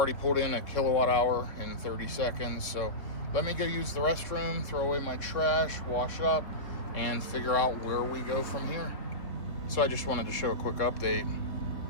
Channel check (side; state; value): right; late; 3.6 ms